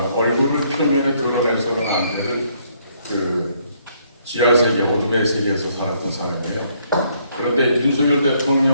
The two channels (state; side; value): inverted; both; correlation -0.69